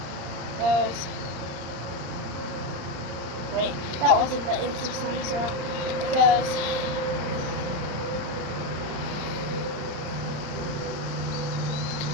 Goes. Wait, that wasn't the Insta Slime Swirl. It goes.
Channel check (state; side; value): late; left; 35 ms